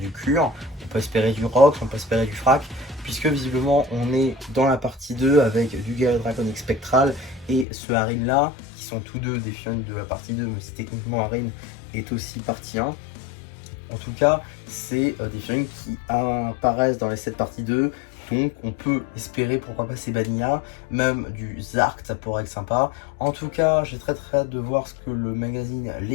Cure, on peut espérer du Rox, on peut espérer du Frac, puisque visiblement on est dans la partie 2 avec du Gale Draconic Spectral et ce Harin là, qui sont tous deux des figurines de la partie 2, mais si techniquement Harin est aussi partie 1. En tout cas, c'est des figurines qui apparaissent dans les 7 parties 2, donc on peut espérer pourquoi pas ces Vanilla, même du Zark, ça pourrait être sympa. En tout cas, j'ai très hâte de voir ce que le magazine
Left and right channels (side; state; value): right; drops out; at 7.7 s